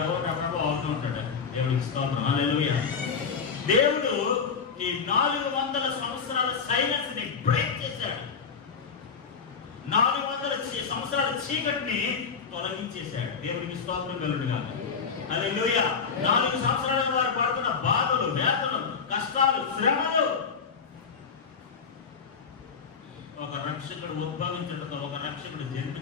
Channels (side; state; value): right; quieter; 5.8 dB